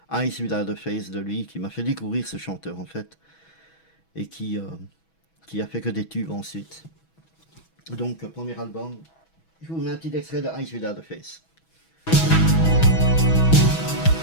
Eyes Without a Face de lui, qui m'a fait découvrir ce chanteur en fait, et qui a fait que des tubes ensuite. Donc, premier album, je vous mets un petit extrait de Eyes Without a Face.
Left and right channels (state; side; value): late; right; 6.2 ms